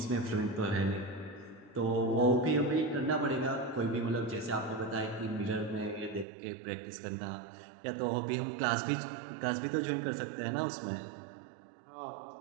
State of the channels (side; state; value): left; drops out; at 6.2 s